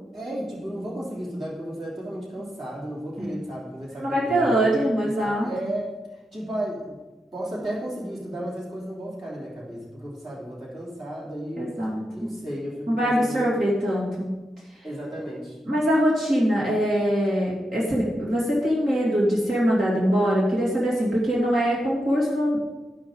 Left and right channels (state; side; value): normal; both; correlation 0.86